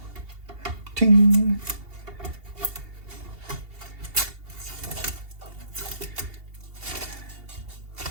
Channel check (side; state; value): left; late; 2.8 ms